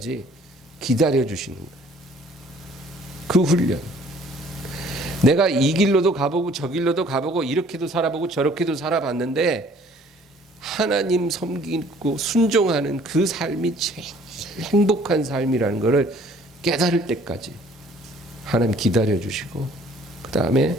기다려 주시는 거예요. 그 훈련. 내가 이 길로도 가보고 저 길로도 가보고 이렇게도 살아보고 저렇게도 살아봤는데 하나님 섬기고 순종하는 그 삶이 제일 행복한 삶이라는 것을 깨달을 때까지 하나님 기다려 주시고 그 다음에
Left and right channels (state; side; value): normal; both; correlation 0.56